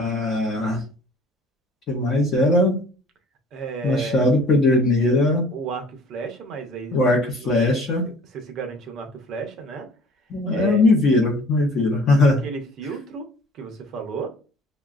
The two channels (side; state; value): both; normal; correlation 0.51